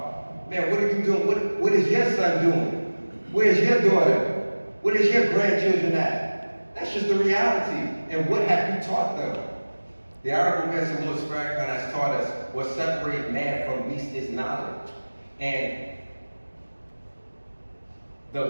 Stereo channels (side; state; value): both; inverted; correlation -1.00